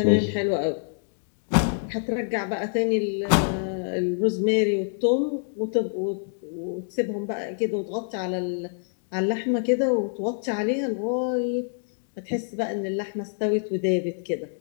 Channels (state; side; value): silent; right; digital silence